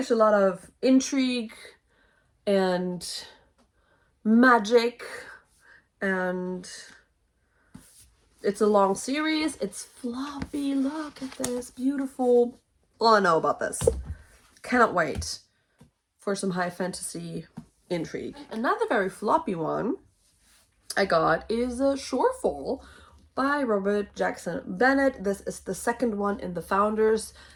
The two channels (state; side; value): identical; both; correlation 1.00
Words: a lot of intrigue, and magic, and it's a long series. It's floppy. Look at this. Beautiful. All I know about this. Cannot wait for some high fantasy intrigue. Another very floppy one I got is a Shorefall by Robert Jackson Bennett. This is the second one in the Founders